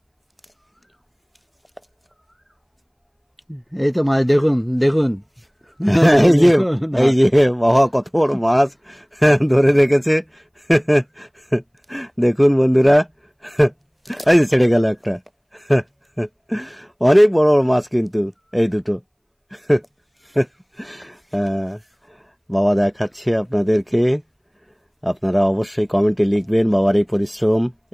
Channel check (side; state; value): both; identical; correlation 1.00